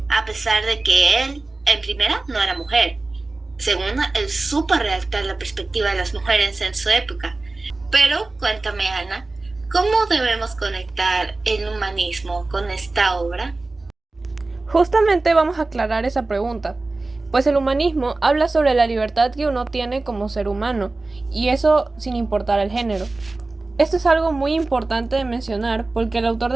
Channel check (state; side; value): quieter; left; 3.2 dB